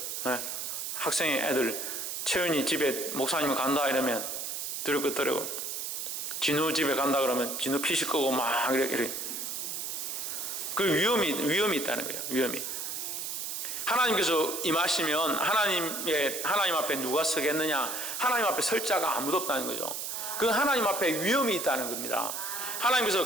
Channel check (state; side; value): noise; right; hiss, 4 dB below the sound